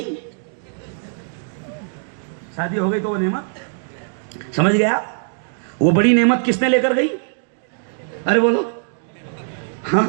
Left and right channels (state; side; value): silent; left; digital silence